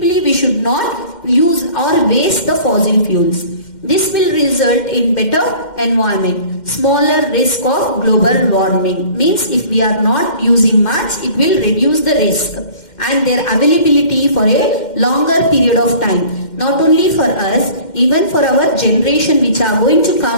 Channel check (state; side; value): late; right; 2.1 ms